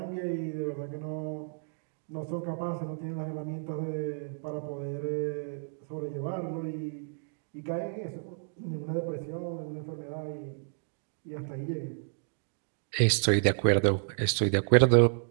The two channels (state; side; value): silent; left; digital silence